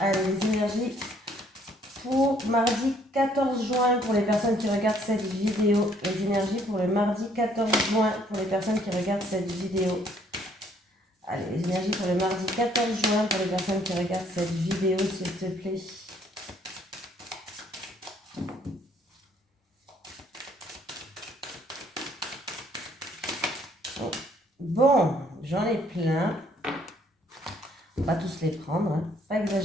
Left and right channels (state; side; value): normal; both; correlation 0.64